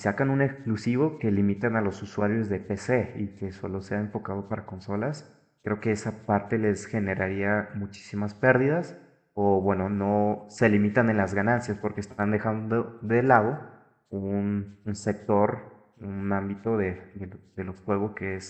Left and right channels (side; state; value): both; identical; correlation 1.00